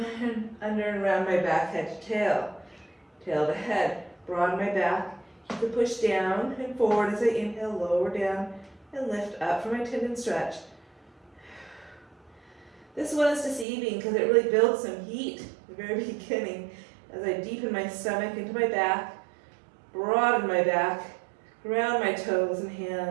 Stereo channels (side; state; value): left; drops out; at 13.7 s